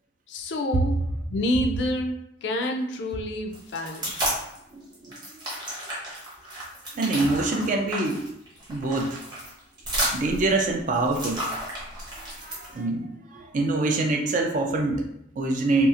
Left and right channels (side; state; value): both; normal; correlation 0.50